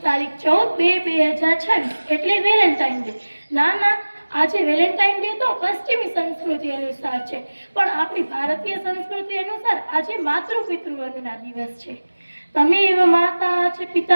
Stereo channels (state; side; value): inverted; both; correlation -1.00